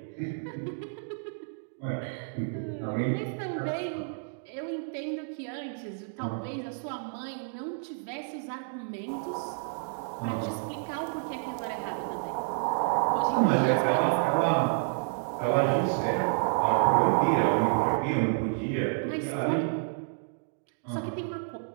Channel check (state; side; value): silent; left; digital silence